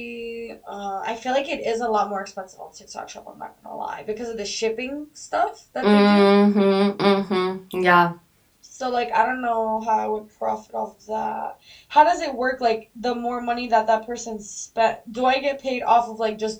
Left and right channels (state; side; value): identical; both; correlation 1.00